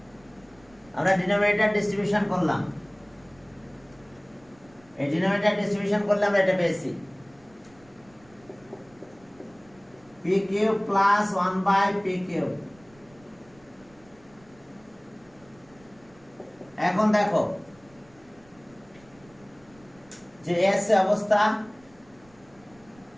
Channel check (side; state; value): right; noise; rumble, 28 dB below the sound